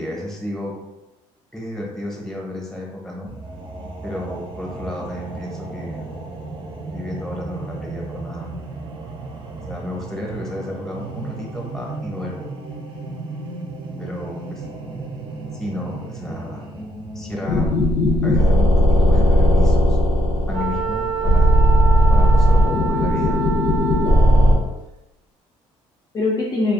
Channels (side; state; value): both; normal; correlation 0.76